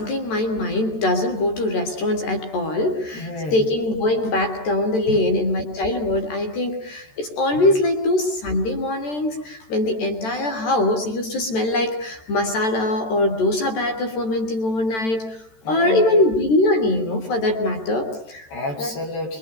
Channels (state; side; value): late; right; 13 ms